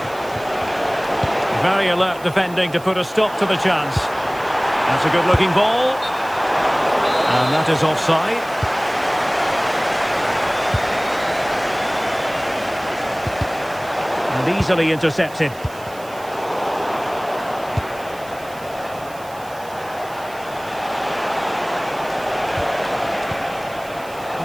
Very alert defending to put a stop to the chance. That's a good-looking ball. And that is offside. And easily intercepted.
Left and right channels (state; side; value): noise; right; hiss, 21 dB below the sound